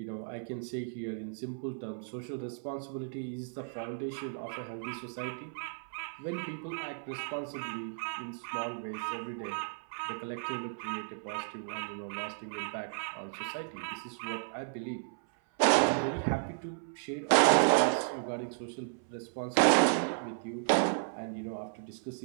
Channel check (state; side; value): silent; left; 55 dB below the other